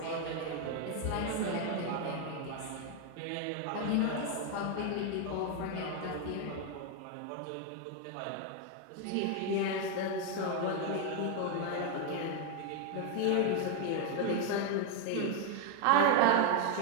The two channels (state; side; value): different; both; correlation 0.01